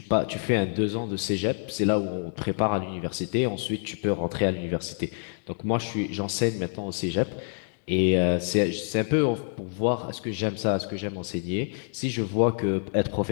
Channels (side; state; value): right; silent; digital silence